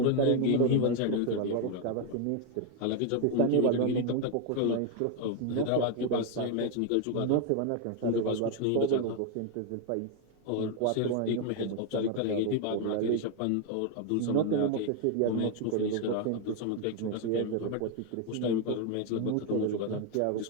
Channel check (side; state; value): both; different; correlation 0.01